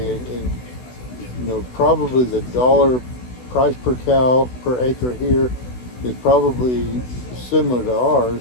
and probably the dollar price per cow per acre here is probably similar to ours.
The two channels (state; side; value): late; right; 16 ms